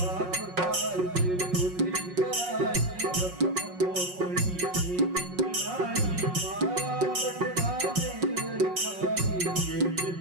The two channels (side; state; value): left; late; 5.5 ms